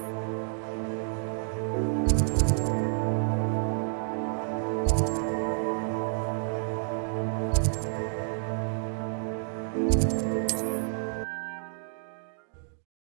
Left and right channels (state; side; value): silent; left; digital silence